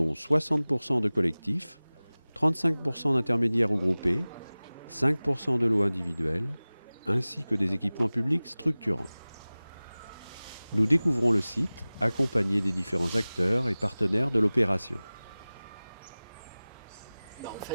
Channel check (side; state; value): both; inverted; correlation -0.99